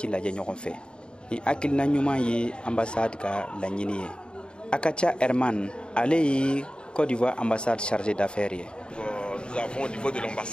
lajɛ ɲɔgɔn fɛ. Ni hakilina ɲuman ye ambassade ka laɲini ye. Akacha Herman ale ye Côte d'Ivoire ambassade chargé d'affaires ye. Nous avons au niveau de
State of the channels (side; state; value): right; late; 0.051 ms